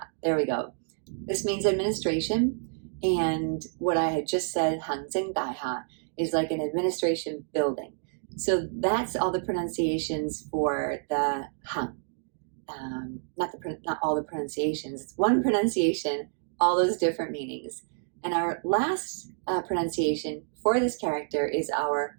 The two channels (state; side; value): silent; left; digital silence